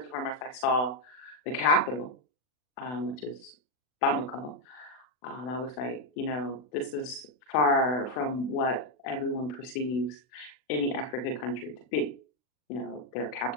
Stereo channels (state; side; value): late; right; 40 ms